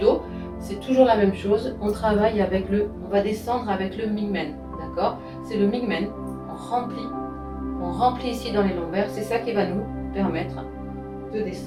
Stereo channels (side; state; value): both; identical; correlation 1.00